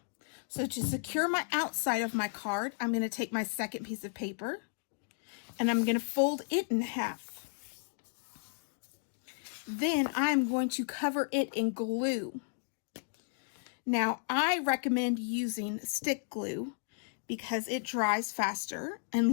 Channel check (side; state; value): right; silent; digital silence